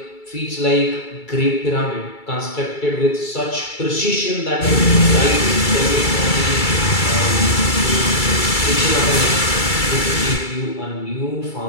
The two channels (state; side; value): late; right; 2.3 ms